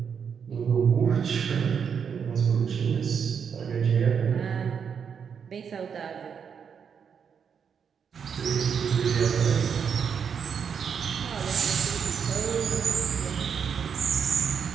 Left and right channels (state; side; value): quieter; left; 7.0 dB